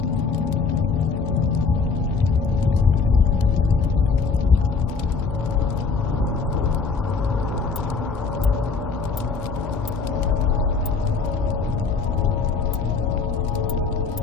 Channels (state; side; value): quieter; right; 4.9 dB